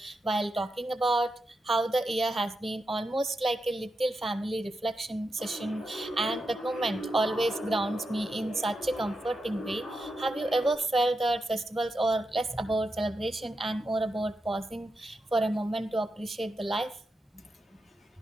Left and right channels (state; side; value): normal; both; correlation 0.87